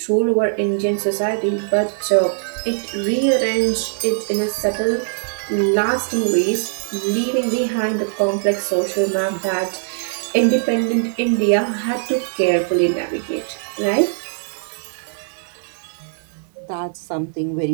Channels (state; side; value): silent; left; 62 dB below the other